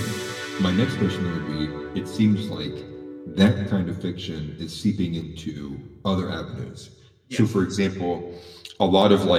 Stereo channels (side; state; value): both; identical; correlation 1.00